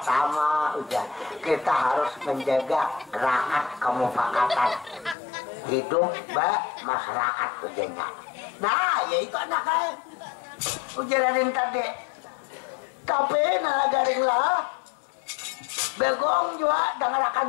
udah kita harus menjaga rakyat kemufakatan hidup masyarakat ujanya. Nah, yaitu anaknya Puji Raden tadi. Tapi nalagaring lah. Bagong juga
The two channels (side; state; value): right; drops out; at 5.2 s